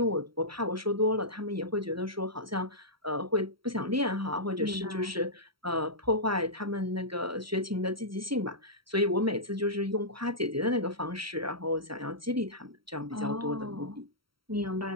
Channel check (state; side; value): late; left; 0.74 ms